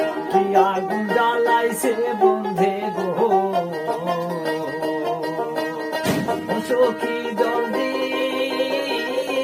কি আগুন জ্বালাইছে বন্ধে গো চোখি জল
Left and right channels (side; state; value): both; identical; correlation 1.00